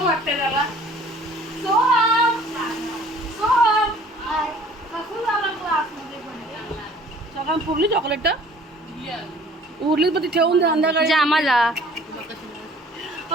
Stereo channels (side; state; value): both; normal; correlation 0.52